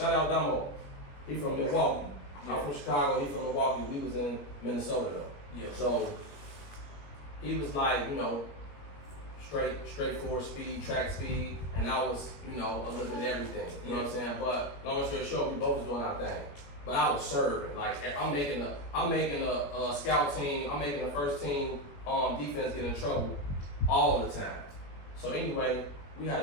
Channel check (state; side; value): late; right; 21 ms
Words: out Damo. He from Milwaukee. Yeah. I'm from Chicago, he from Milwaukee. We was in Minnesota though. Yeah. So he was like, you know, straightforward speed, track speed, and I was, you know, a little bit of everything. You know what I'm saying? But long story short, we both was doing our thing. But I was serving. Like I'm making a scout team, I'm making the first team defense get in trouble all the time. So anyway, we had